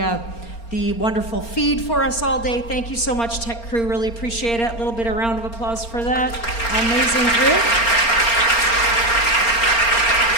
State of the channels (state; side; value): late; right; 4.3 ms